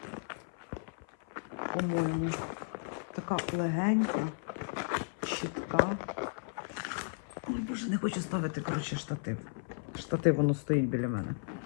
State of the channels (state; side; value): silent; right; 55 dB below the other